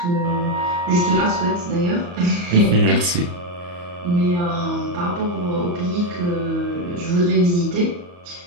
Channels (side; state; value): left; late; 34 ms